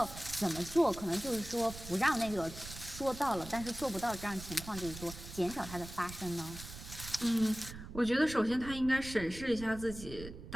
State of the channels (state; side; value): noise; right; rumble, 12 dB below the sound